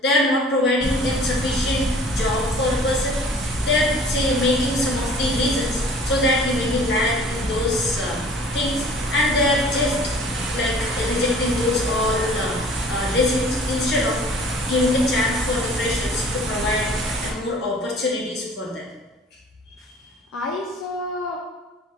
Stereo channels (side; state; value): both; normal; correlation 0.49